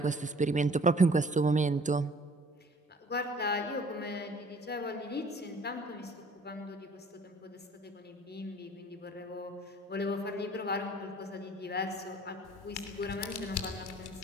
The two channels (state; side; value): normal; both; correlation 0.53